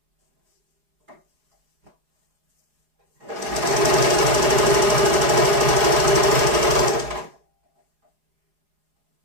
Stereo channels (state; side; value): late; left; 4.8 ms